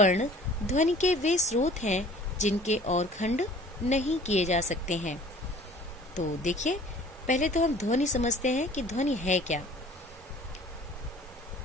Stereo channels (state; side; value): normal; both; correlation 0.49